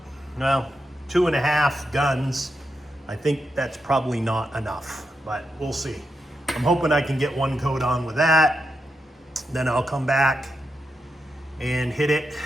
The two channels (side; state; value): both; normal; correlation 0.86